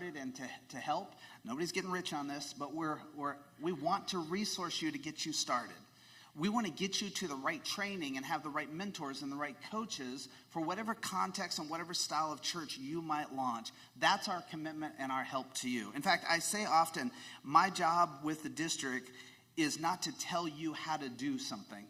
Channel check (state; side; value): identical; both; correlation 1.00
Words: and to help. Nobody's getting rich on this, but we want to resource you to get you started. We want to get you to the right training and have the right mentors and the right coaches for whatever context and whatever style of church you might launch. That's our commitment and our help to you. In fact, I say often, my job with the district is not to tell you how to do something,